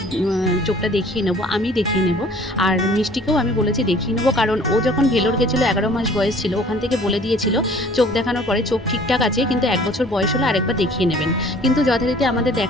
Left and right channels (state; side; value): normal; both; correlation 0.52